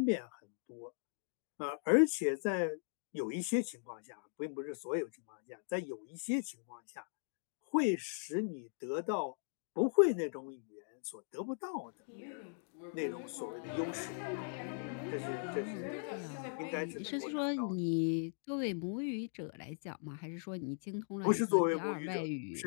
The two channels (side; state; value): right; silent; digital silence